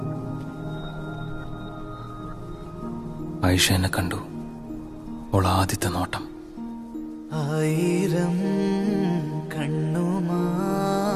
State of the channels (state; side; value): identical; both; correlation 1.00